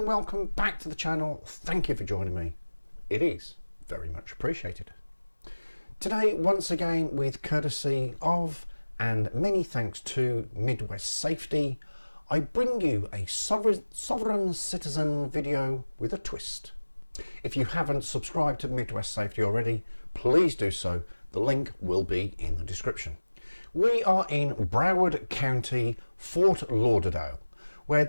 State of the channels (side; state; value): both; inverted; correlation -1.00